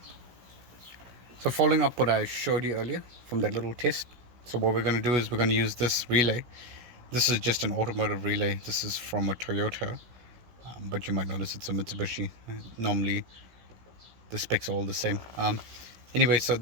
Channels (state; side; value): late; left; 16 ms